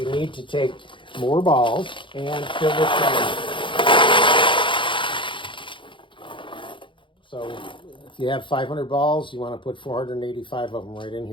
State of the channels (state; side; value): late; right; 0.24 ms